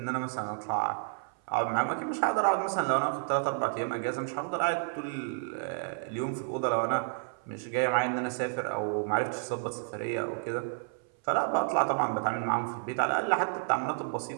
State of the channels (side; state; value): left; silent; 57 dB below the other